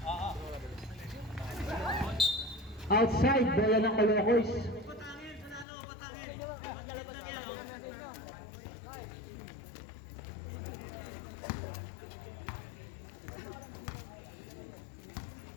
Outside, bola ng Calocos.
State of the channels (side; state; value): right; drops out; at 5.7 s